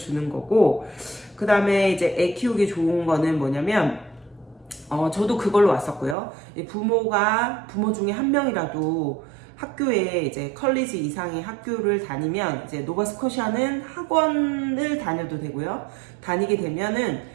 거고, 그 다음에 이제 애 키우기 좋은 거는 뭐냐면, 저도 그걸로 왔었고요. 부모 중에 한 명이라도 학교에 이제 컬리지 이상의 학교를 다니면, 이제 노바스코샤는 학원을 다녀도 되고요. 다니게 되면은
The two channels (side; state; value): left; drops out; at 6.2 s